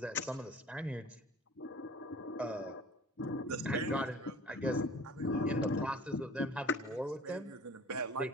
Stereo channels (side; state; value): both; normal; correlation 0.46